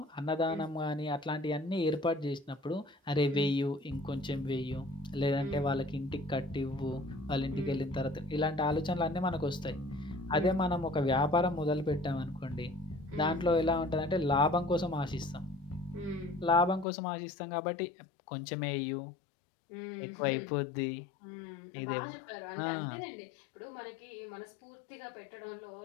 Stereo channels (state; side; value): drops out; right; at 16.9 s